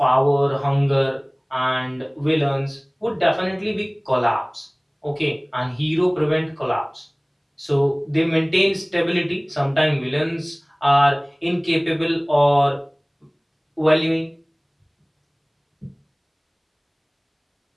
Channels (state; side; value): identical; both; correlation 1.00